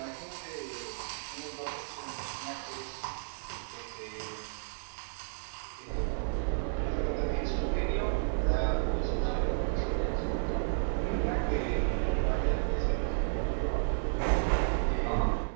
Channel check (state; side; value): silent; left; 56 dB below the other